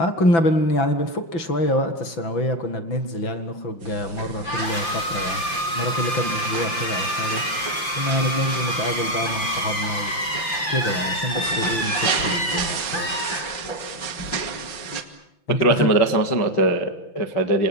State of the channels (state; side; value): late; right; 5.8 ms